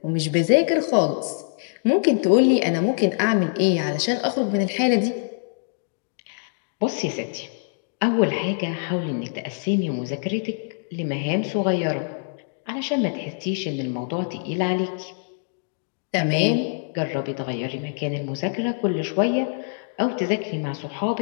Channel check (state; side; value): silent; right; digital silence